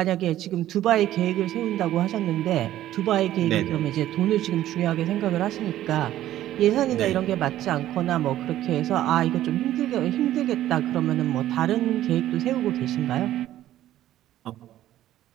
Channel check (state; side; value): quieter; left; 13.3 dB